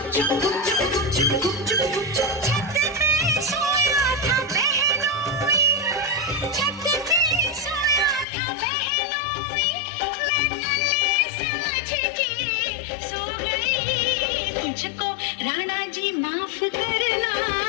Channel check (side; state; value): right; drops out; at 8.2 s